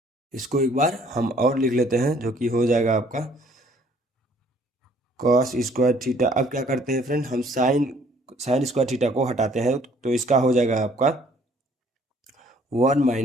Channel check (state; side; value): normal; both; correlation 0.60